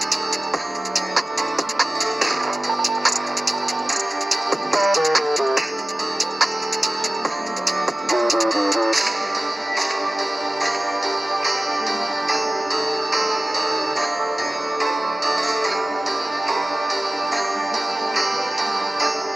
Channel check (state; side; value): normal; both; correlation 0.95